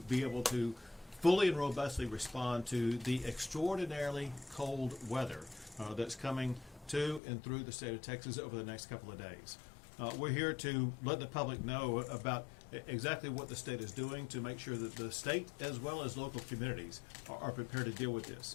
able to fully and robustly respond to the extraordinarily cold weather that's coming to and through the state of Texas over the next couple of days. We're here to let the public know about exactly what the state is doing to make sure that the state as well as local communities are prepared to deal with this.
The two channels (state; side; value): drops out; right; at 7.2 s